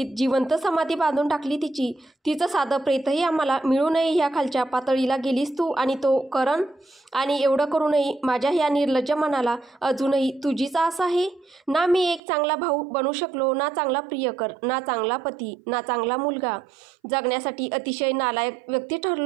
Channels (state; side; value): drops out; left; at 12.2 s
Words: जिवंत समाधी बांधून टाकली तिची. तिचं साधं प्रेतही आम्हाला मिळू नये ह्या खालच्या पातळीला गेलीस तू आणि तो करण. आणि एवढं करूनही माझ्या ह्या निर्लज्ज मनाला अजूनही तुझीच आस आहे. ना मी एक चांगला भाऊ बनू शकलो, ना चांगला प्रियकर, ना चांगला पती, ना चांगला मुलगा. जगण्यासाठी अतिशय नालायक व्यक्ती